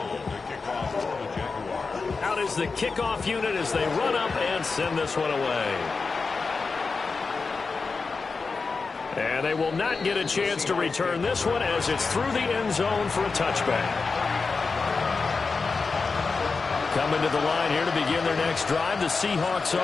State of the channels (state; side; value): quieter; right; 4.4 dB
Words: Is the kickoff unit as they run up and send this one away. And they will not get a chance to return this one as it's through the end zone for a touchback. Coming to the line here to begin their next drive, the Seahawks